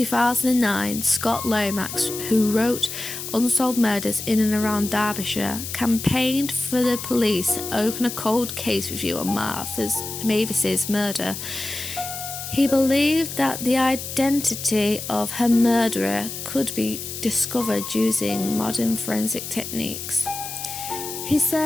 Scott Lomax, who wrote Unsolved Murders in and around Derbyshire, campaigned for the police to open a cold case review on Mavis's murder. He believed that the identity of her murderer could be discovered using modern forensic techniques. He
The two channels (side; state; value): left; noise; hiss, 8 dB below the sound